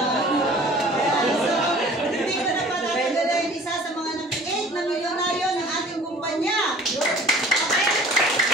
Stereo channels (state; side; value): normal; both; correlation 0.48